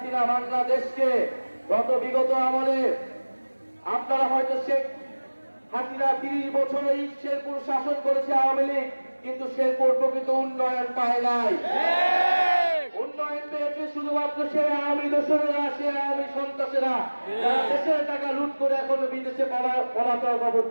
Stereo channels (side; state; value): both; inverted; correlation -1.00